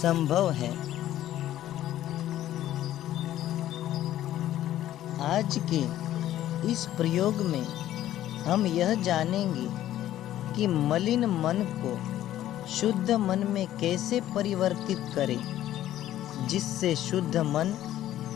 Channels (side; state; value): right; quieter; 13.0 dB